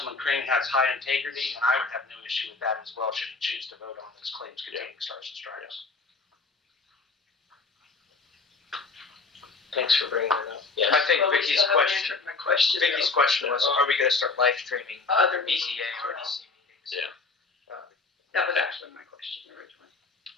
Crane has high integrity, and I would have no issue with that as well, should he choose to vote on those claims containing stars and stripes. Thanks for bringing that up. Yes. I think Well, we Vicky's still haven't question. answered my question. Vicky's though. question was, are we going to start live streaming Other BCA meetings. or DC meetings? Yeah. That was actually my question originally.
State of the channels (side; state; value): right; quieter; 4.0 dB